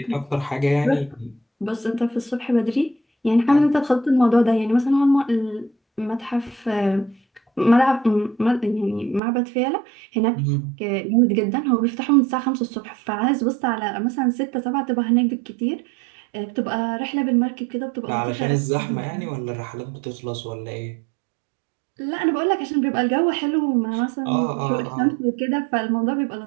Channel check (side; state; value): left; drops out; at 9.2 s